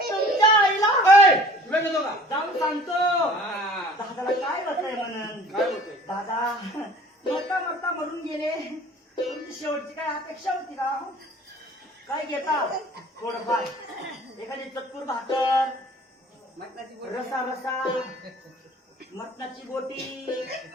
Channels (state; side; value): normal; both; correlation 0.48